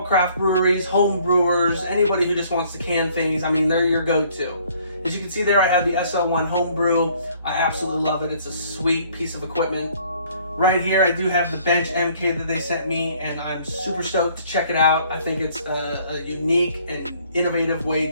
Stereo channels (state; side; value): inverted; both; correlation -0.60